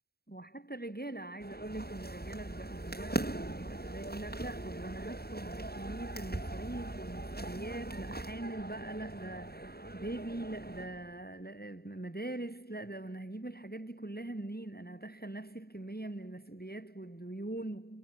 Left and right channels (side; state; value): right; late; 0.46 ms